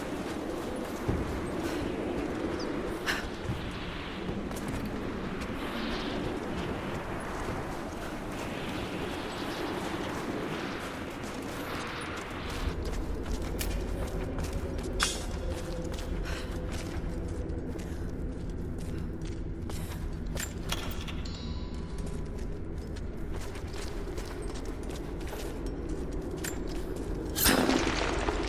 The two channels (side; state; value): both; identical; correlation 1.00